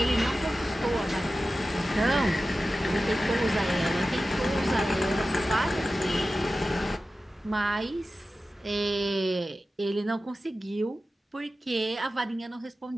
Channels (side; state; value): both; normal; correlation 0.94